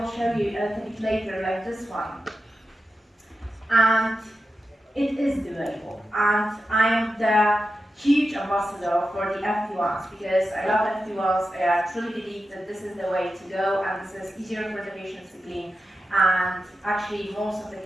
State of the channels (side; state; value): both; normal; correlation 0.91